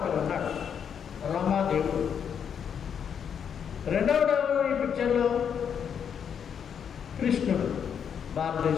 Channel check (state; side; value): quieter; right; 7.7 dB